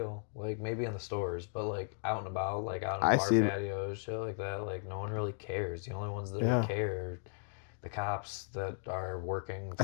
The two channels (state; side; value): silent; right; digital silence